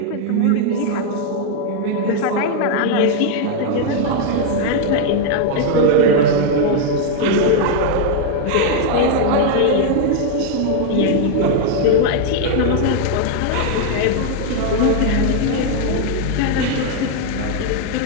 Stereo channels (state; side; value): different; both; correlation 0.00